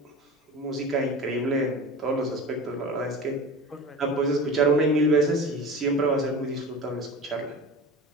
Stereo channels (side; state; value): both; normal; correlation 0.33